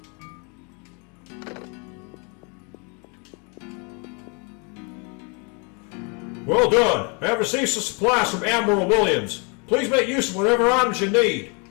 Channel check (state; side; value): quieter; right; 34.1 dB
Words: Well done! I have received some supplies from Admiral Williams. Please make use of whatever items you need.